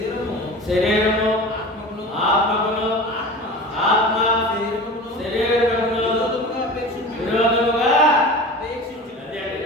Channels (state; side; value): normal; both; correlation 0.35